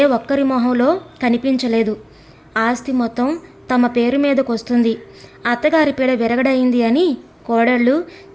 ఒక్కరి మొహంలో కనిపించలేదు. ఆస్తి మొత్తం తమ పేరు మీదకొస్తుంది, అత్తగారి పీడ విరగడైంది అని కోడళ్ళు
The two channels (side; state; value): both; identical; correlation 1.00